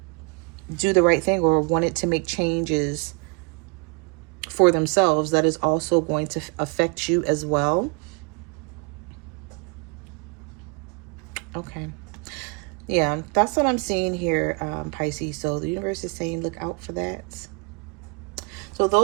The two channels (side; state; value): left; quieter; 33.3 dB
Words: do the right thing or wanted to make changes for themselves that is also going to affect you as well. Okay. Yeah, that's what I'm seeing here, Pisces. So the universe is saying, look out for that. So